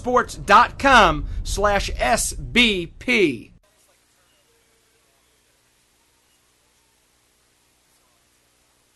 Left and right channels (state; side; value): identical; both; correlation 1.00